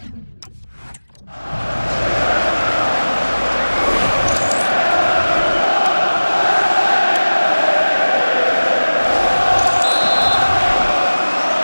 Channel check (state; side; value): inverted; both; correlation -1.00